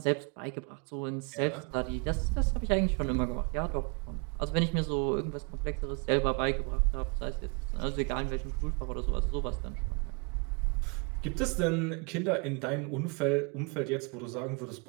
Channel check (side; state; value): left; quieter; 34.1 dB